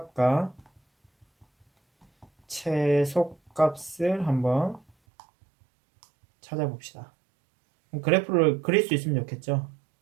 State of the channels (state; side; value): drops out; left; at 4.9 s